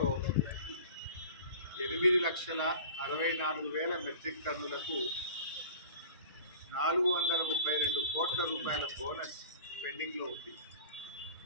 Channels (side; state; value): both; inverted; correlation -0.39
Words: 8,64,000 మెట్రిక్ టన్నులకు 432 కోట్ల రూపాయల బోనస్ పెండింగ్లో ఉంది.